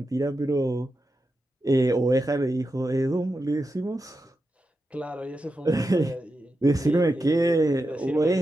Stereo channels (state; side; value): normal; both; correlation 0.89